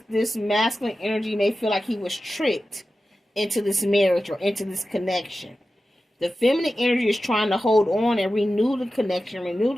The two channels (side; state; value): both; normal; correlation 0.93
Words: masculine energy may feel like he was tricked into this marriage or into this connection. The feminine energy is trying to hold on and renew the connection, renew